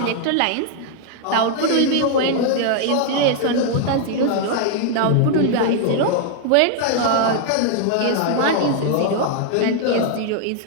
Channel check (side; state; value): both; different; correlation 0.00